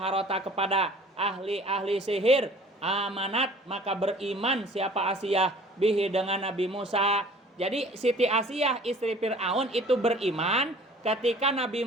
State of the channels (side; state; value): both; normal; correlation 0.49